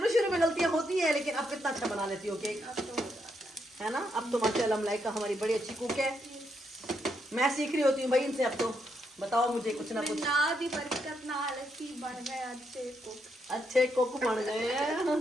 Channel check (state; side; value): normal; both; correlation 0.79